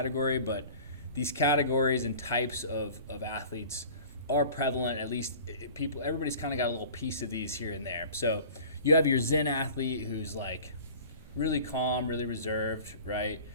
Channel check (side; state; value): both; inverted; correlation -0.43